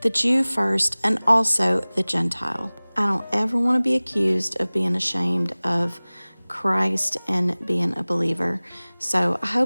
Jew first and also the Gentile." I don't ever want to be accused of being ashamed of Christ and being a believer. So I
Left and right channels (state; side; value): inverted; both; correlation -1.00